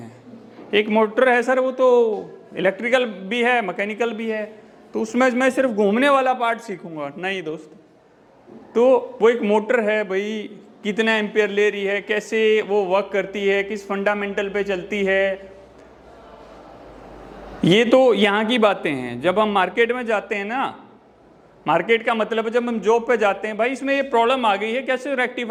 एक मोटर है सर, वो तो इलेक्ट्रिकल भी है, मैकेनिकल भी है, तो उसमें मैं सिर्फ घूमने वाला पार्ट सीखूंगा। नहीं दोस्त, तो वो एक मोटर है, भाई कितना एम्पियर ले रही है, कैसे वो वर्क करती है, किस फंडामेंटल पे चलती है, ये तो यहाँ की बातें हैं। जब हम मार्केट में जाते हैं ना, मार्केट का मतलब है जब हम जॉब पे जाते हैं, भाई इसमें ये प्रॉब्लम आ गई है, कैसे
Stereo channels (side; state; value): both; identical; correlation 1.00